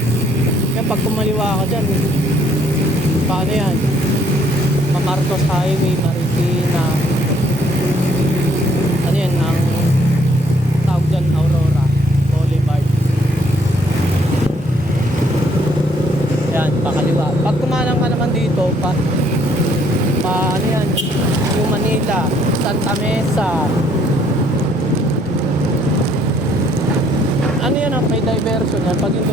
Kaya pag kumaliwa ka dyan, paano yan? Mamarcos Highway, Marikina. Ano yan? Ang tawag dyan, Aurora Boulevard. Yan, pakaliwa. Pag kumalang ka naman dito, ano yan? Yung Manila, Santa Mesa. Ano yan, may diversion yan. Pag yun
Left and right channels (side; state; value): both; normal; correlation 0.66